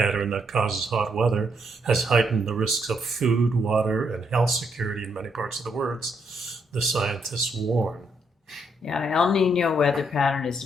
that causes hot weather, has heightened the risks of food, water, and health security in many parts of the world, the scientists warn. Yeah, El Nino weather pattern is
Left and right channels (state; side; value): normal; both; correlation 0.75